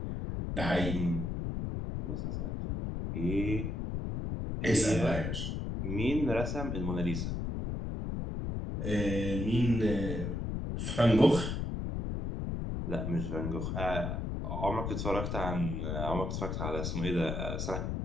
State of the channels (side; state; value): left; noise; rumble, 2 dB below the sound